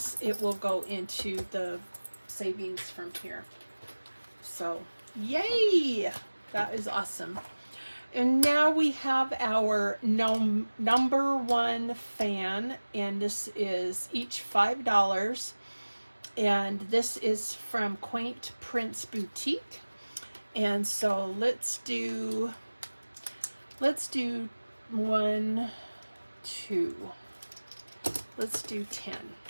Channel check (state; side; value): inverted; both; correlation -1.00